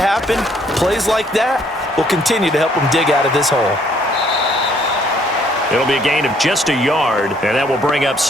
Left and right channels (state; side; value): normal; both; correlation 0.65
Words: Plays like that will continue to help them dig out of this hole. It'll be a gain of just a yard, and that will bring up